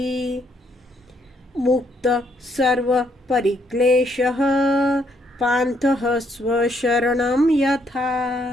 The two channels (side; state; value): both; normal; correlation 0.71